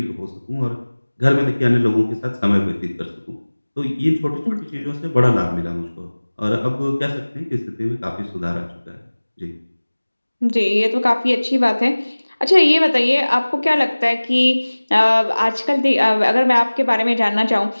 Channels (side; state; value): both; inverted; correlation -1.00